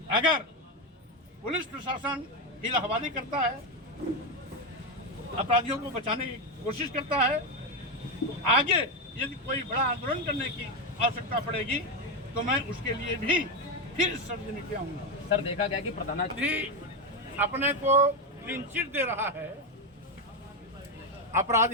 अगर पुलिस प्रशासन हीला-हवाली करता है, अपराधियों को बचाने की कोशिश करता है, तो आगे यदि कोई बड़ा आंदोलन करने की आवश्यकता पड़ेगी तो मैं उसके लिए भी फिर इस सरजमी पे आऊंगा। सर, देखा गया कि प्रधानाधिकारी अपने को क्लीन चिट दे रहा है।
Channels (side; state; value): both; normal; correlation 0.10